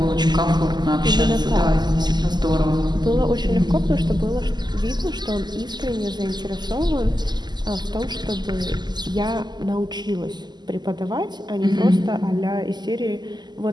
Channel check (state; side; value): late; left; 0.21 ms